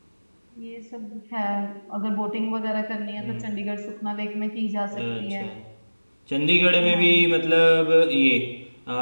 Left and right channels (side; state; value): both; inverted; correlation -1.00